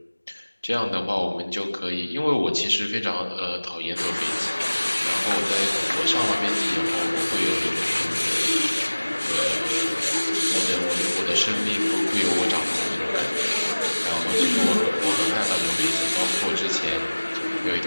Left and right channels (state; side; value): inverted; both; correlation -1.00